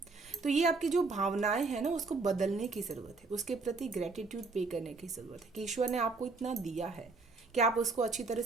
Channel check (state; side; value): quieter; left; 4.0 dB